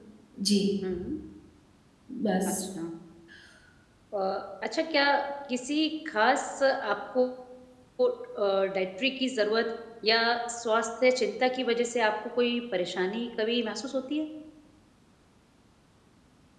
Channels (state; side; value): identical; both; correlation 1.00